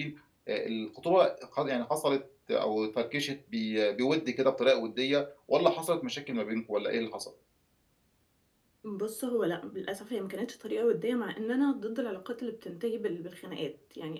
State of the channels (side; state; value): both; identical; correlation 1.00